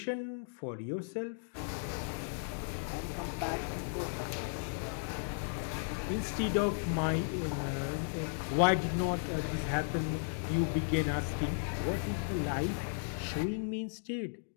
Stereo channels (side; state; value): right; silent; digital silence